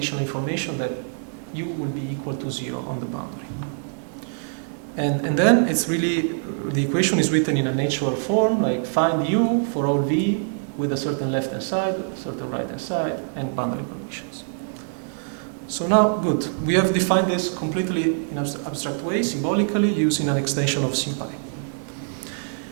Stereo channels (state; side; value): silent; left; digital silence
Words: information that u will be equal to 0 on the boundary. And then it's really, the equation is written in a natural form, like find u for all v with a certain left-hand side, a certain right-hand side, and boundary conditions. So now, good. We have defined this completely in an abstract way, symbolically, using an extension of SymPy.